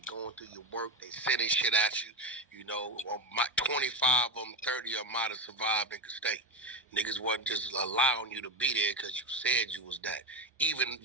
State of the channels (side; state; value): both; normal; correlation 0.12